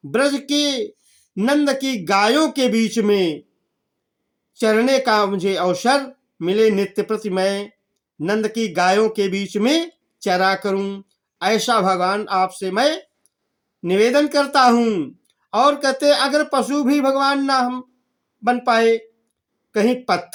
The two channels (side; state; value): both; identical; correlation 1.00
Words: ब्रज की नंद की गायों के बीच में चरने का मुझे अवसर मिले, नित्य प्रति मैं नंद की गायों के बीच में चरा करूं, ऐसा भगवान आपसे मैं निवेदन करता हूं। और कहते अगर पशु भी भगवान ना हम बन पाए, कहीं